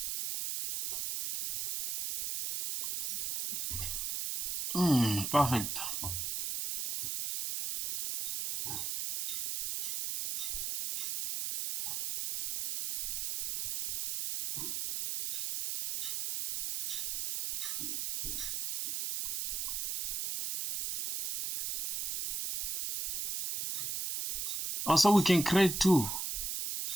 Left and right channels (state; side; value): noise; right; hiss, 2 dB below the sound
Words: Perfect. Also, we can create two